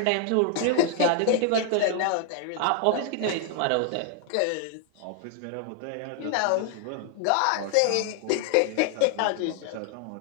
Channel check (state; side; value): different; both; correlation 0.00